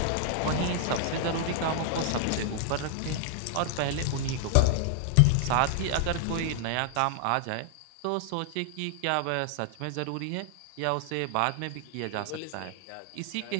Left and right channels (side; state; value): both; different; correlation 0.00